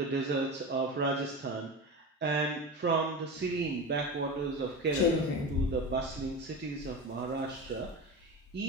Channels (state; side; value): normal; both; correlation 0.26